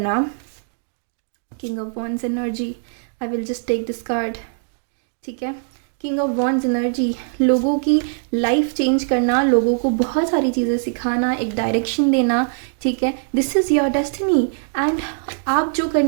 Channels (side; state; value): left; silent; digital silence